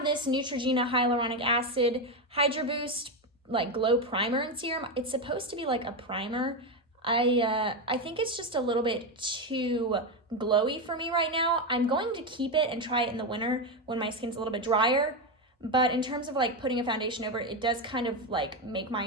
this Neutrogena Hyaluronic Acid Hydro Boost like glow primer and serum. It's supposed to be like a primer. I think it's just a little bit too glowy for me right now. I'm going to keep it and try it in the winter when my skin's a little bit drier. But in terms of like putting a foundation over it, it does kind of like make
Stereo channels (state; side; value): normal; both; correlation 0.11